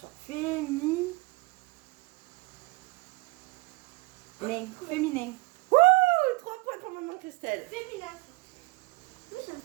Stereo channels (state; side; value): quieter; left; 23.6 dB